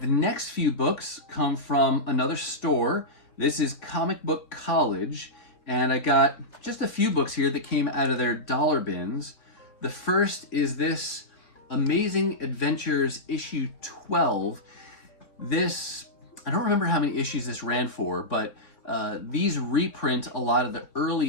next few books come from another store. This is Comic Book College, and I got just a few books here that came out of their dollar bins. The first is this Amazing Adventures issue 12. This, I don't remember how many issues this ran for, but these reprint a lot of the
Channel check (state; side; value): late; right; 3.8 ms